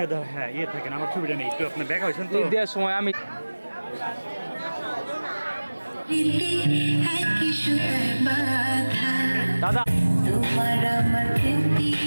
হ্যাঁ ইয়ে থাকেন, আমার ছবিটা নেই, একটু আপনার দেখা হয়েছেন তো। দেওয়ার সময় আমি দাদা তোমার আমার রীতি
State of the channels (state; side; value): inverted; both; correlation -1.00